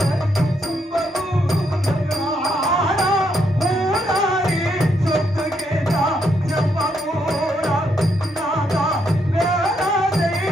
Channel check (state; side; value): normal; both; correlation 0.76